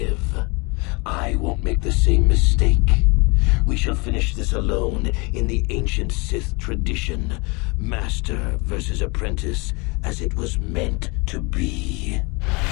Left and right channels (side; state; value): right; quieter; 28.8 dB